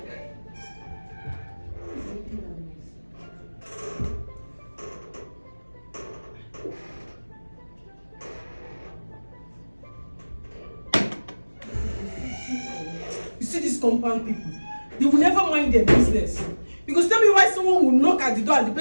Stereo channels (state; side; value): inverted; both; correlation -1.00